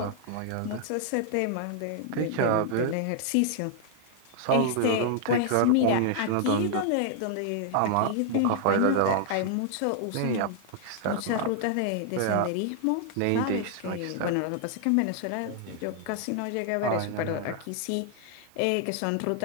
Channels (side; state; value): both; different; correlation 0.00